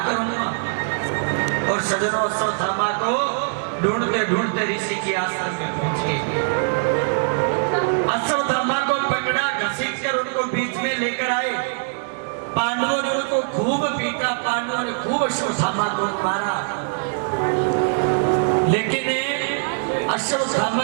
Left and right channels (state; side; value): silent; left; digital silence